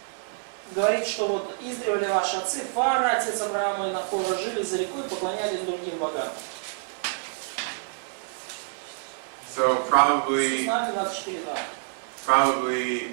Говорит, что вот издревле ваши отцы, Фара, отец Авраама и Нахора, жили за рекой и поклонялись другим богам. So probably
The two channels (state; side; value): silent; left; digital silence